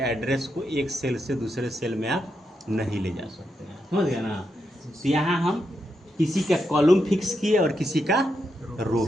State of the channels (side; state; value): both; normal; correlation 0.84